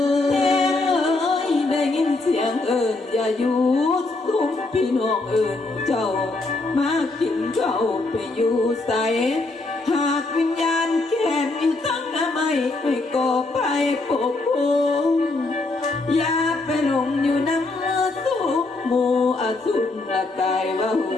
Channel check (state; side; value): quieter; right; 3.2 dB